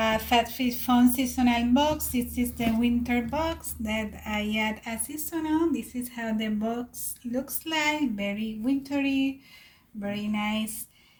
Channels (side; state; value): both; identical; correlation 1.00